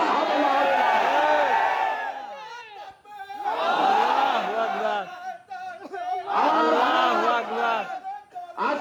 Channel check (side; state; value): both; identical; correlation 1.00